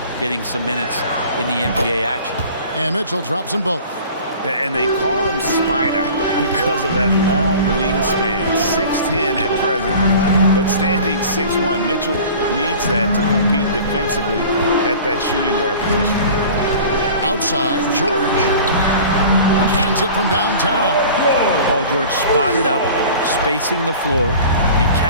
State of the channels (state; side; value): inverted; both; correlation -0.42